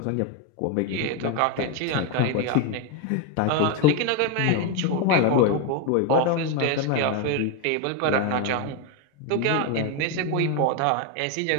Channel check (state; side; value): different; both; correlation 0.02